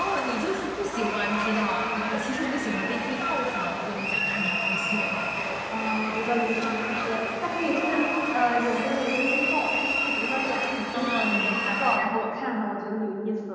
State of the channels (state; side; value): identical; both; correlation 1.00